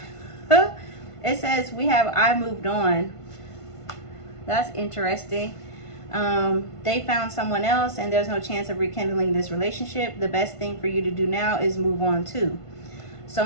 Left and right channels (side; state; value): right; late; 1.5 ms